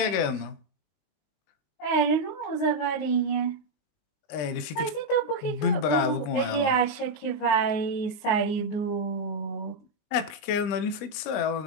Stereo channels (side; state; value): right; late; 20 ms